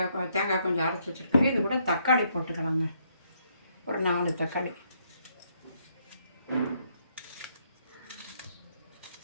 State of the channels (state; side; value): inverted; both; correlation -0.72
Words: கொஞ்சம் அரைச்சி வச்சுருக்கோங்க. இது கூட தக்காளி போட்டுக்கலாங்க, ஒரு 4 தக்காளி.